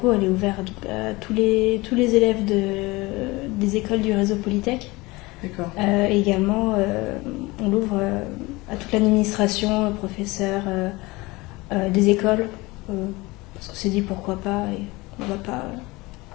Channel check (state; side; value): quieter; right; 22.4 dB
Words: il est ouvert à tous les élèves des écoles du réseau Polytech. D'accord. Et également on l'ouvre à toute l'administration, professeurs des écoles, parce qu'on s'est dit pourquoi pas et on va pas